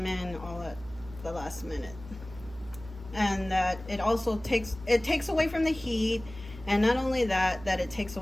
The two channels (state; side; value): noise; right; hum, 16 dB below the sound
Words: in all at the last minute. And that it also takes away from the heat, and not only that it takes